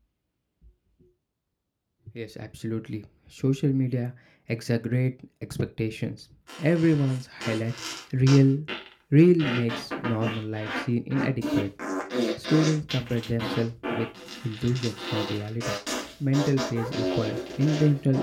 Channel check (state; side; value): identical; both; correlation 1.00